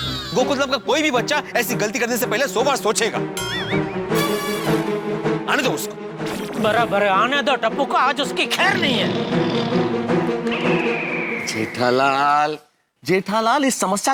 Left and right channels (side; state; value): both; identical; correlation 1.00